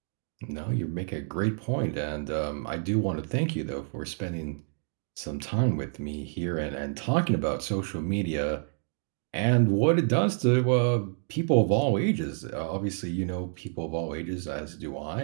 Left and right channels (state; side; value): silent; left; digital silence